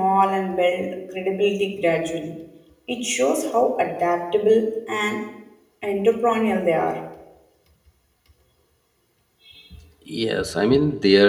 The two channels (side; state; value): both; identical; correlation 1.00